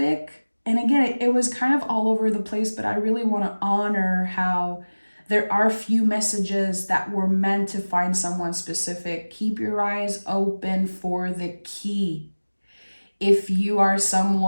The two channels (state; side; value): inverted; both; correlation -1.00